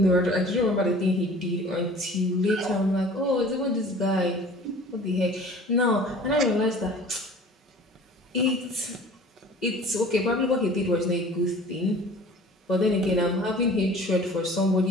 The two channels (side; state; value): both; normal; correlation 0.46